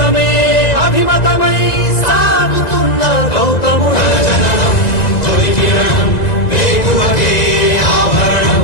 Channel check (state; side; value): late; right; 1.9 ms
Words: అభిమతమై సాగుతున్న గౌతముడు. జననం తొలి కిరణం వేగువకే ఆభరణం,